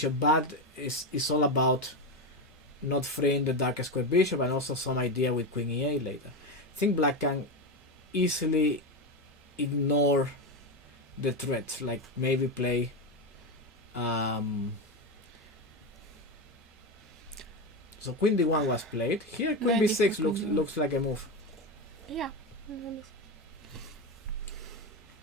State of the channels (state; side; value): normal; both; correlation 0.14